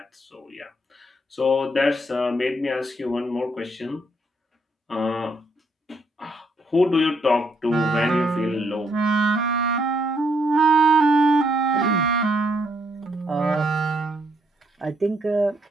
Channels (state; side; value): normal; both; correlation 0.72